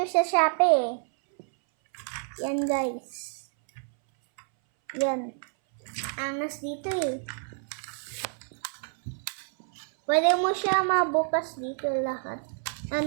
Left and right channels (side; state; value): left; silent; 59 dB below the other